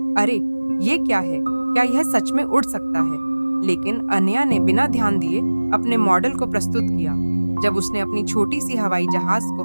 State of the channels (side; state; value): both; inverted; correlation -1.00